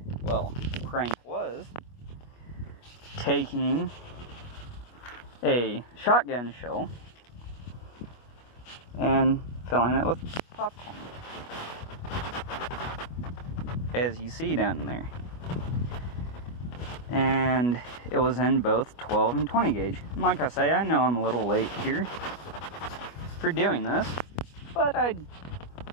well, the prank was taking a shotgun shell and filling it with popcorn, as you see down there. And it was in both 12 and 20 gauge. And like I say, I know I'm a little late here for doing this, but I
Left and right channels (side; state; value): right; late; 25 ms